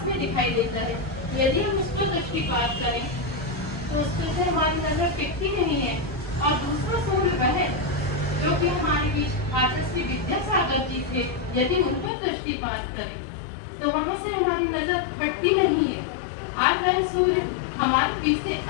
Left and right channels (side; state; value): right; drops out; at 12.1 s